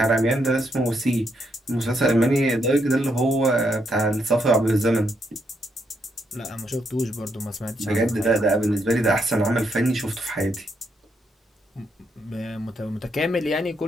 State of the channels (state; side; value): normal; both; correlation 0.77